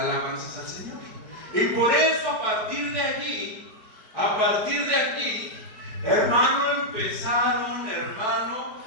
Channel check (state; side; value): late; left; 4.6 ms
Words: al Señor. Y por eso a partir de aquí, hermano, empezaron,